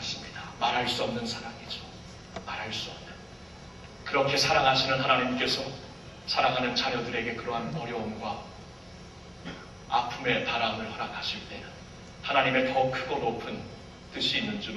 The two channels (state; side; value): identical; both; correlation 1.00